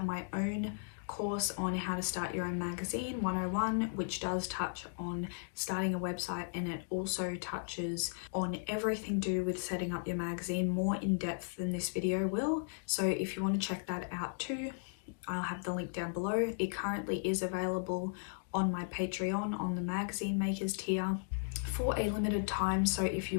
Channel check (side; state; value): right; silent; digital silence